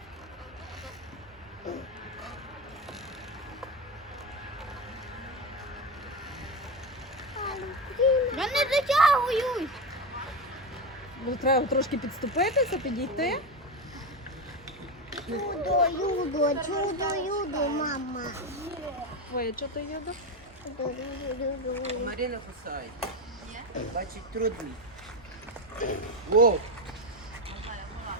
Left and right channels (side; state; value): both; normal; correlation 0.15